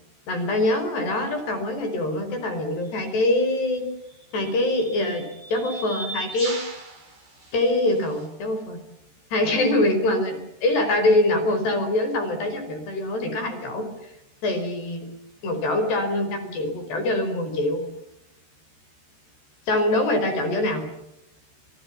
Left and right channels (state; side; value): late; right; 13 ms